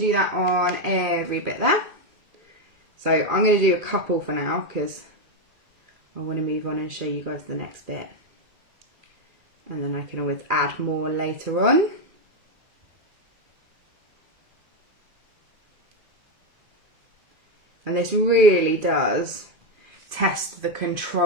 that on every bit there. So I'm going to do a couple for now because I want to move on and show you guys the next bit. And then I can always add more later on. And this really does test the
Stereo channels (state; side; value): late; left; 2.4 ms